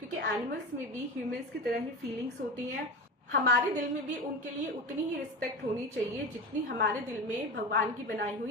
एनिमल्स में भी ह्यूमंस की तरह ही फीलिंग्स होती हैं। हमारे दिल में भी उनके लिए उतनी ही रिस्पेक्ट होनी चाहिए जितनी हमारे दिल में भगवान की बनाई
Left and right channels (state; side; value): normal; both; correlation 0.25